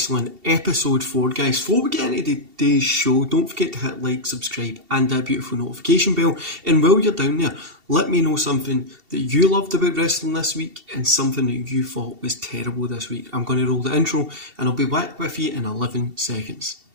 episode 4, guys. Before we get into today's show, don't forget to hit like, subscribe, and that beautiful notification bell. And while you're down there, let me know something that you loved about wrestling this week and something that you thought was terrible this week. I'm going to roll the intro, and I'll be back with you in 11 seconds.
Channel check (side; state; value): left; late; 2.7 ms